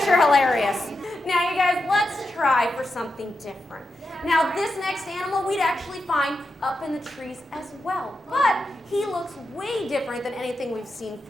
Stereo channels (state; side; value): normal; both; correlation 0.88